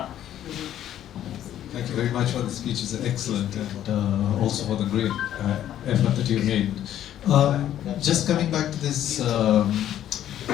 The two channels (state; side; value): quieter; right; 11.5 dB